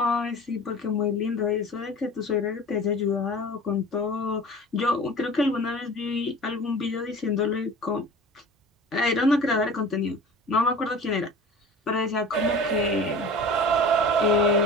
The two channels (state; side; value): normal; both; correlation 0.39